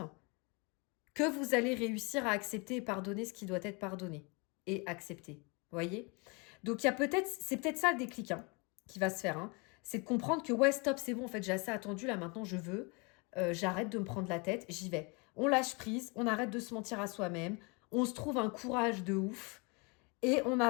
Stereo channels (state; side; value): quieter; right; 30.5 dB